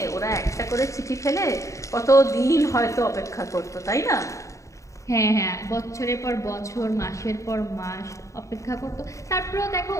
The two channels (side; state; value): right; late; 0.15 ms